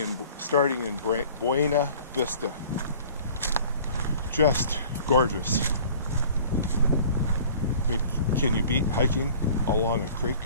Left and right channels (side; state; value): both; inverted; correlation -0.47